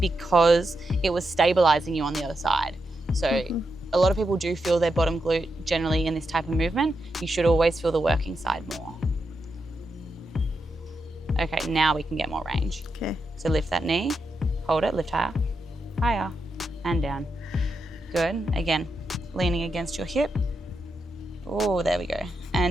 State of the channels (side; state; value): both; normal; correlation 0.85